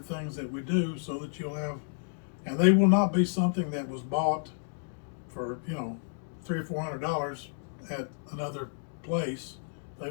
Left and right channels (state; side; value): silent; right; digital silence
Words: things that we do, so that you'll have, and they will not be something that was bought for, you know, $300 or $400 at another place. They